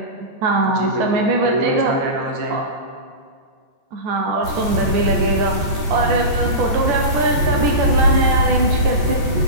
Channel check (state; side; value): late; left; 14 ms